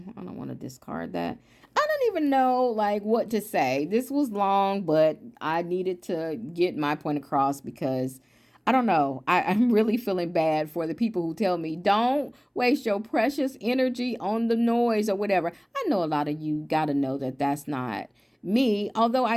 I don't want to discard that. I don't even know, like, what to say. This was long, but I needed to get my point across because I don't know. I'm really feeling bad for the people who tell me, don't waste your precious energy on the noise or whatever. I know a lot of you got to know that that's not me, although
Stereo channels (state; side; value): identical; both; correlation 1.00